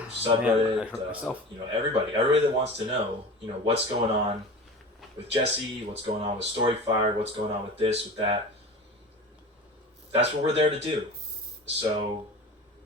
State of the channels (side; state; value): both; normal; correlation 0.35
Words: subreddit. Everybody that wants to know, what's going on with Jesse, what's going on with Storyfire, what's going on with this, with that. That's what we're there to do. So